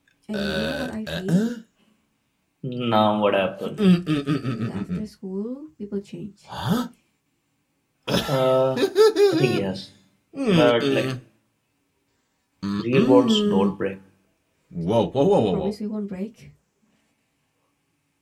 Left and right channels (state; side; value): identical; both; correlation 1.00